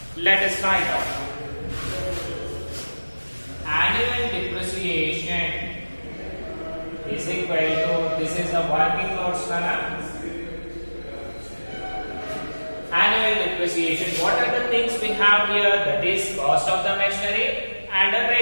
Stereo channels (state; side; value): inverted; both; correlation -1.00